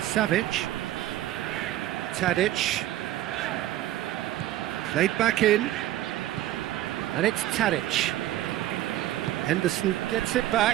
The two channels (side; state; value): left; quieter; 14.1 dB